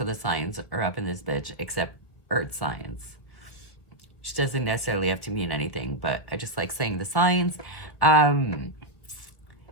of the signs are up in this bitch except Earth signs, which doesn't necessarily have to mean anything, but I just like saying the signs.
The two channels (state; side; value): late; right; 1.8 ms